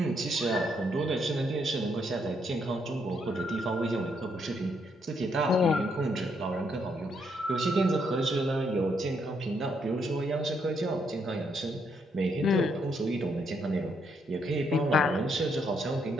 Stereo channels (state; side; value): normal; both; correlation 0.75